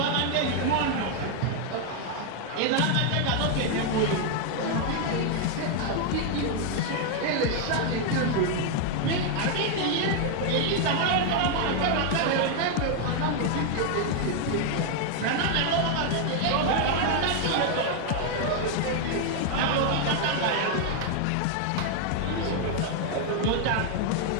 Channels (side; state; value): both; different; correlation 0.00